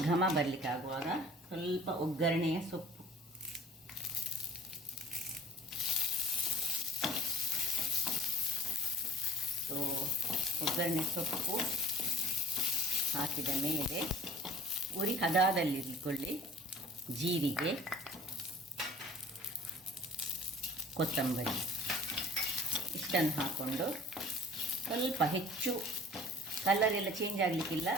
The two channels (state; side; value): normal; both; correlation 0.49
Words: ಘಮ ಬರಲಿಕ್ಕೆ ಆಗುವಾಗ ಸ್ವಲ್ಪ ಒಗ್ಗರಣೆಯ ಸೊಪ್ಪು, ಒಗ್ಗರಣೆ ಸೊಪ್ಪು ಹಾಕಿದ ಮೇಲೆ ಉರಿ ಹದದಲ್ಲಿಟ್ಕೊಳ್ಳಿ. ಜೀರಿಗೆ, ಕೊತ್ತಂಬರಿ ಇಷ್ಟನ್ನು ಹಾಕ್ಕೊಂಡು ಸ್ವಲ್ಪ ಹೆಚ್ಚು ಕಲರ್ ಎಲ್ಲ ಚೇಂಜ್ ಆಗಲಿಕ್ಕಿಲ್ಲ.